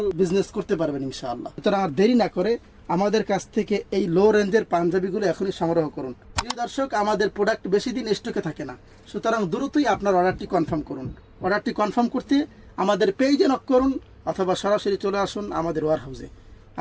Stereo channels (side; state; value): both; identical; correlation 1.00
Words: বিজনেস করতে পারবেন ইনশাআল্লাহ। সুতরাং আর দেরি না করে আমাদের কাছ থেকে এই লো রেঞ্জের পাঞ্জাবিগুলো এখনই সংগ্রহ করুন। প্রিয় দর্শক, আমাদের প্রোডাক্ট বেশি দিন স্টকে থাকে না, সুতরাং দ্রুতই আপনার অর্ডারটি কনফার্ম করুন। অর্ডারটি কনফার্ম করতে আমাদের পেজে নক করুন অথবা সরাসরি চলে আসুন আমাদের ওয়ার হাউসে।